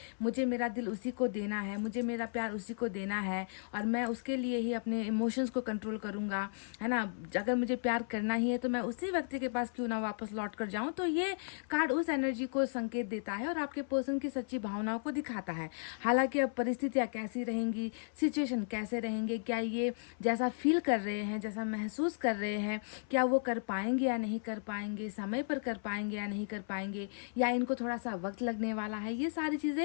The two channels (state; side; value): silent; right; 55 dB below the other